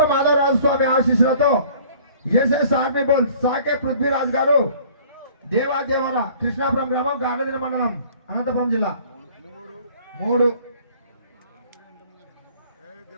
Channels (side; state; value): both; inverted; correlation -0.53